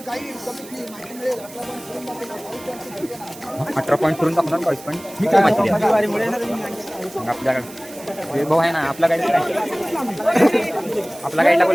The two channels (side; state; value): right; noise; hiss, 18 dB below the sound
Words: 18 पॉईंट करून दाखवणार 22 पॉईंट. काय माहिती द्या आपल्याकडे भाऊ आहे ना आपला गाईड काय आपला गाईडला